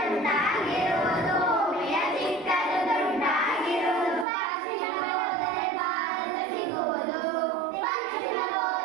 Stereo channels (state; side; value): drops out; left; at 4.2 s